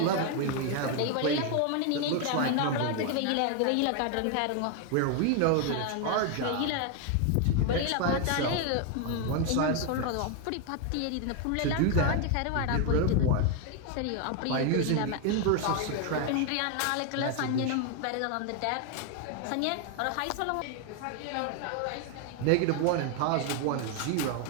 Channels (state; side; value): different; both; correlation 0.01